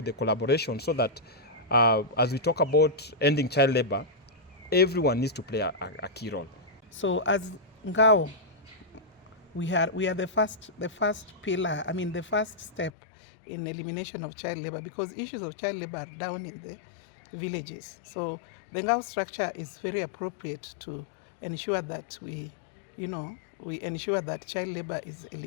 the collaboration, so that as we talk about ending child labor, everyone needs to play a key role. So as Ngao, we are the first pillar, the first step in elimination of child labor, because issues of child labor are down in the villages. So the Ngao structure is very appropriate to ensure that we ensure that child labor is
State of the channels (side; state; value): right; drops out; at 12.9 s